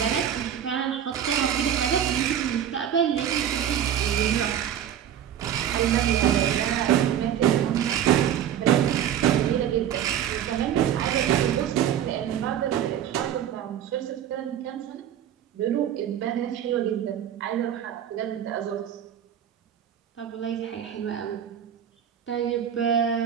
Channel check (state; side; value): quieter; left; 9.9 dB